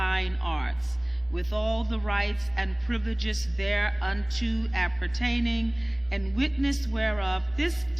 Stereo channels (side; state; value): right; noise; hum, 24 dB below the sound